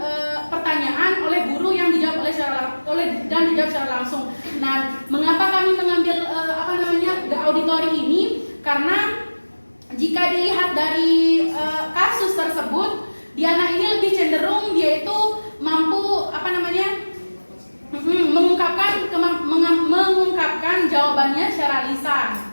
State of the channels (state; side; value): inverted; both; correlation -1.00